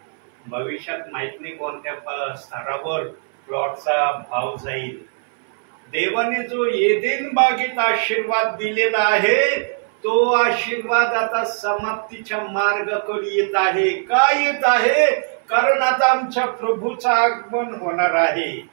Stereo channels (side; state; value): left; silent; 65 dB below the other